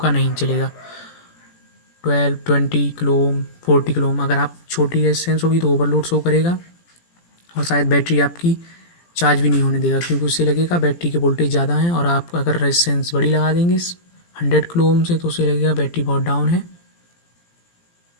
नहीं चलेगा। 12, 20 किलो ओम, 40 किलो ओम। अगर आप छोटी रेजिस्टेंस होगी तो ओवरलोड शो करेगा, और शायद बैटरी आपकी चार्ज भी नहीं होने देगा, क्योंकि उससे लगेगा बैटरी के वोल्टेज ज़्यादा है। और आप अगर रेजिस्टेंस बड़ी लगा देंगे 100 किलो ओम से, तो उससे लगेगा बैटरी बहुत डाउन है,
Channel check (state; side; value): late; right; 17 ms